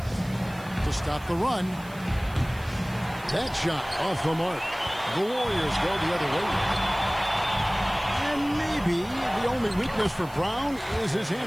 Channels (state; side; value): noise; right; hiss, 22 dB below the sound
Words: To stop the run. That shot off the mark. The Warriors go the other way. And maybe the only weakness for Brown is his